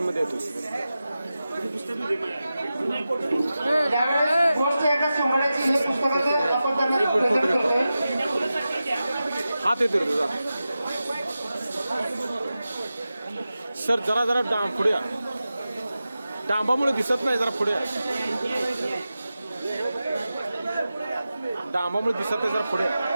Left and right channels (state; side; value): inverted; both; correlation -0.93